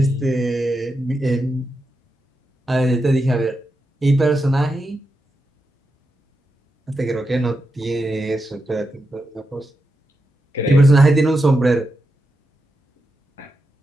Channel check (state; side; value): normal; both; correlation 0.87